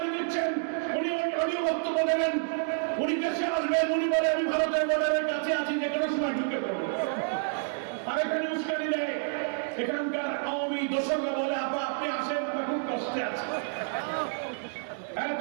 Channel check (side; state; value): left; silent; 58 dB below the other